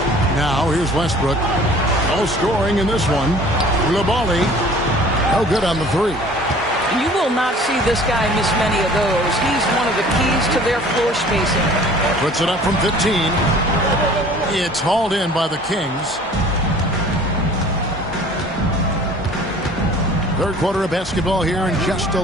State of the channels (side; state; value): both; normal; correlation 0.49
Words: Now here's Westbrook. No scoring in this one. Coulibaly, no good on the 3. You will not see this guy miss many of those. He's one of the keys to their floor spacing. Puts it up from 15. It's hauled in by the Kings. Third quarter of basketball here, and just a